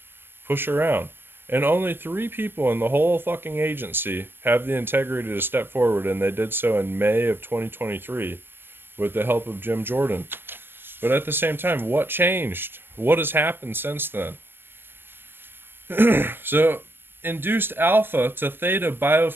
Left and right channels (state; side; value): late; left; 0.10 ms